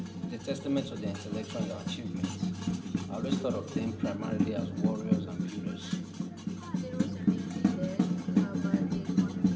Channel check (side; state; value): both; identical; correlation 1.00